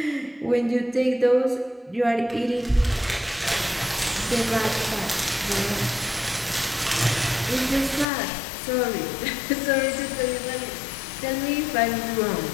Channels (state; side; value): drops out; right; at 8.1 s